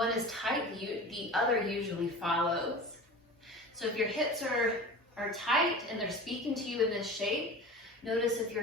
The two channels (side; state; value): both; normal; correlation 0.35